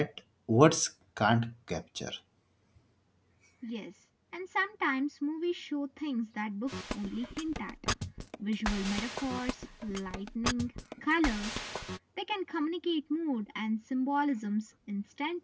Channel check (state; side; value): identical; both; correlation 1.00